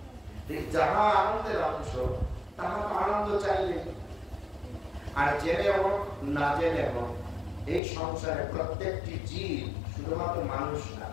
যাহা আনন্দের অংশ তাহা তো আনন্দ চাইবে। আর জেনে হোক না জেনে হোক এই সংসারে প্রত্যেকটি জীব, শুধুমাত্র মানুষ না,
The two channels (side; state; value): right; drops out; at 7.8 s